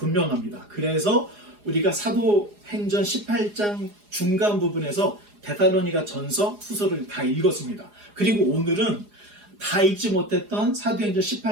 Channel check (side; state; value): left; late; 4.8 ms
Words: 그래서 우리가 사도행전 18장 중간 부분에서 데살로니가 전서 후서를 다 읽었습니다. 그리고 오늘은 다 읽지 못했던 사도행전